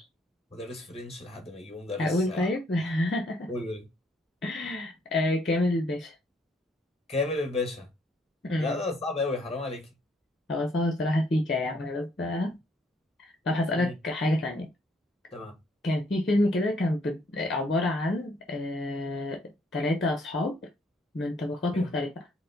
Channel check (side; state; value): both; normal; correlation 0.68